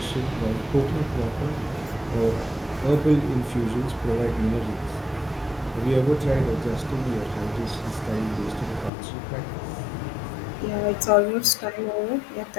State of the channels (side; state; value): right; drops out; at 8.9 s